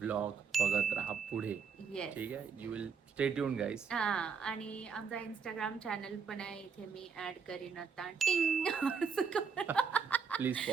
बघत राहा पुढे. येस ठीक आहे. You will stay tuned guys. हा आणि आमचा इंस्टाग्राम चॅनल पण आहे इथे मी ऍड करीन आता. टिंग प्लीज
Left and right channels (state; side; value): quieter; left; 6.0 dB